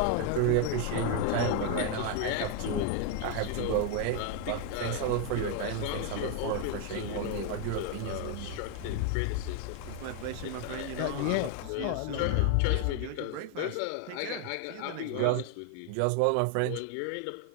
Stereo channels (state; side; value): different; both; correlation 0.01